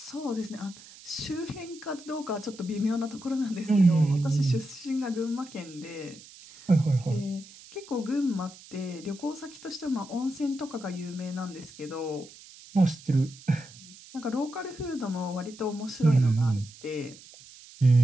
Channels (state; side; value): noise; right; hiss, 20 dB below the sound